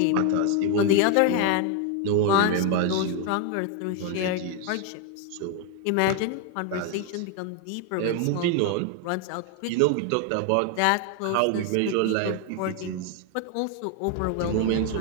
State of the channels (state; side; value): different; both; correlation 0.00